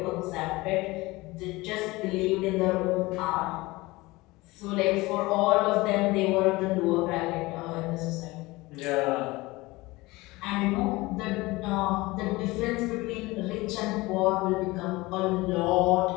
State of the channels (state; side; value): quieter; right; 21.4 dB